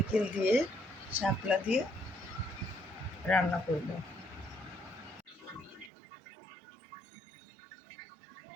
দিয়ে, শাপলা দিয়ে রান্না করব।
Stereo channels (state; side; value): drops out; left; at 5.9 s